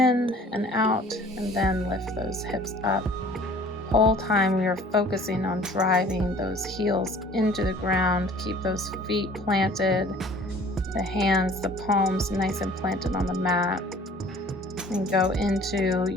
and out, and then lift those hips up. Whole time we are focusing on driving those heels into the ground. Keep those feet planted, the hands, the palms nice and planted on the mat. And go into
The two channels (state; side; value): normal; both; correlation 0.50